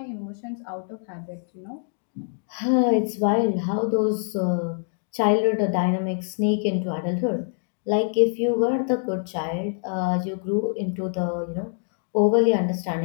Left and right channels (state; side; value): silent; right; 62 dB below the other